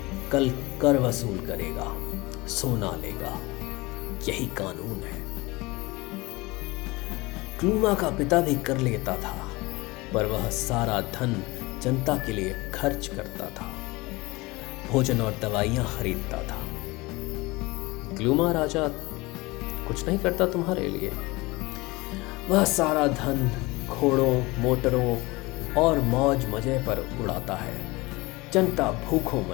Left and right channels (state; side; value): quieter; right; 22.8 dB